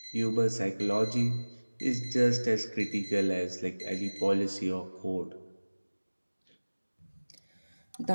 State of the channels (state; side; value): inverted; both; correlation -1.00